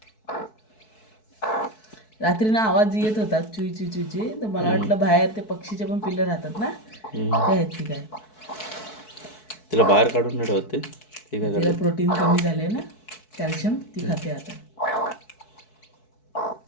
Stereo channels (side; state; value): right; late; 4.6 ms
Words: रात्री ना आवाज येत होता चुई चुई चुई, तर मला वाटलं बाहेर ते पक्षीचे पण पिल्लं राहतात ना, ते आहेत की काय. तिला बाहेर काढून नाही ठेवते. ते काय तिला करते? प्रोटीन कमी झाले ना, कॅल्शियम, ती खाते आता.